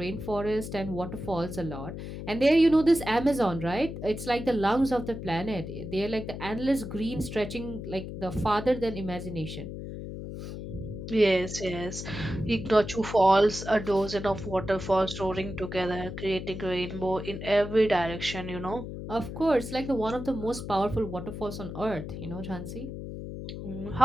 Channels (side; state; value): left; noise; hum, 8 dB below the sound